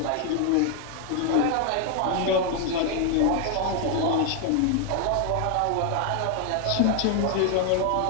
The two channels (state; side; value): different; both; correlation 0.00